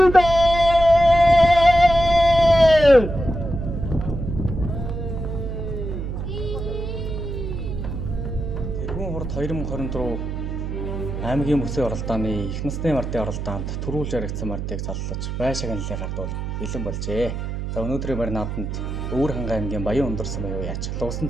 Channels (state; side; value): noise; right; hum, 4 dB below the sound